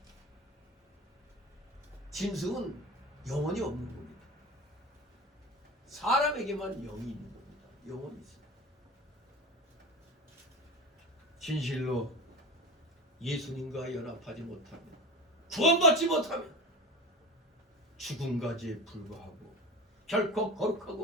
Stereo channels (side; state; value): both; normal; correlation 0.31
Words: 짐승은 영혼이 없는 겁니다. 사람에게만 영이 있는 겁니다. 영혼이 있어요. 진실로 예수님과 연합하지 못하면, 구원받지 못하면 죽은 가지에 불과하고 결코